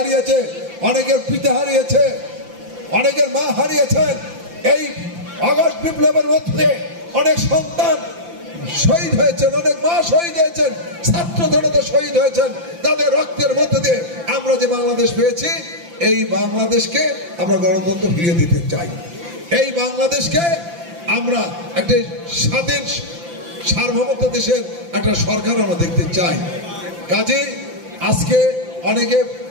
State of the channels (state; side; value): late; left; 5.8 ms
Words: অনেকের পিতা হারিয়েছে, অনেকের মা হারিয়েছেন। এই আগস্ট বিপ্লবের মধ্যে অনেক সন্তান শহীদ হয়েছেন, অনেক মা শহীদ হয়েছেন, ছাত্র জনতা শহীদ হয়েছেন। তাদের রক্তের মধ্যে দিয়ে আমরা যে বাংলাদেশ পেয়েছি, এই বাংলাদেশকে আমরা গণতন্ত্র ফিরিয়ে দিতে চাই। এই বাংলাদেশকে আমরা একটা স্বাধীন সার্বভৌমত্ব দেশের একটা সরকার আমরা দেখতে চাই। কাজে আজকে অনেকে